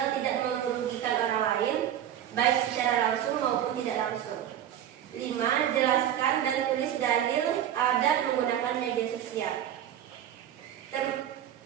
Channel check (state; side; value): quieter; left; 10.7 dB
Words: tidak merugikan orang lain, baik secara langsung maupun tidak langsung. 5. Jelaskan dan tulis dalil adat menggunakan media sosial.